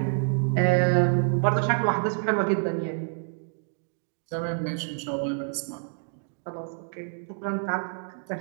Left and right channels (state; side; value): silent; left; 60 dB below the other